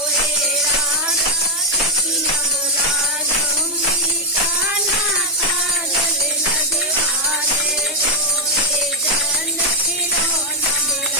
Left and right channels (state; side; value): normal; both; correlation -0.01